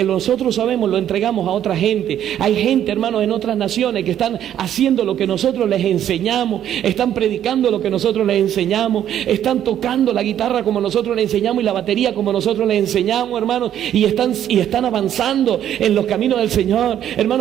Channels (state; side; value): quieter; left; 10.7 dB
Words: nosotros sabemos, lo entregamos a otra gente. Hay gente, hermanos, en otras naciones que están haciendo lo que nosotros les enseñamos, están predicando lo que nosotros les enseñamos, están tocando la guitarra como nosotros les enseñamos y la batería como nosotros les enseñamos, hermanos, y están avanzando en los caminos del Señor.